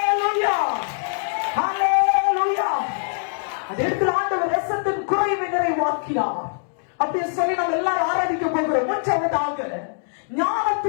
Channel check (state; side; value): silent; right; digital silence